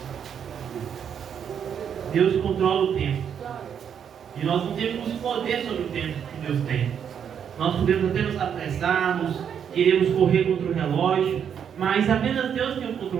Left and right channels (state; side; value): quieter; left; 8.1 dB